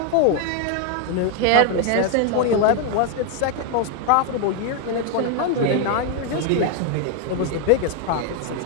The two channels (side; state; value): both; different; correlation 0.01